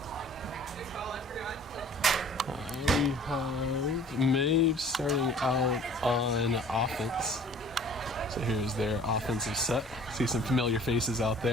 We have Maeve starting out on offense. So here's their offensive set. See some familiar faces out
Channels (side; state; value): both; normal; correlation 0.49